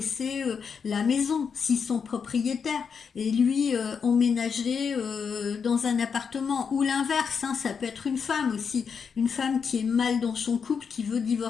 la maison, s'ils sont propriétaires, et lui emménager dans un appartement, ou l'inverse, hein, ça peut être une femme aussi, une femme qui est mal dans son couple, qui veut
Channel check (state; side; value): quieter; right; 6.2 dB